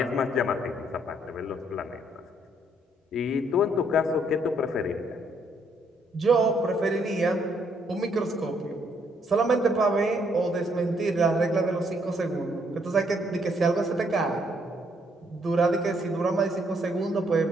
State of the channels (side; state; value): both; normal; correlation 0.70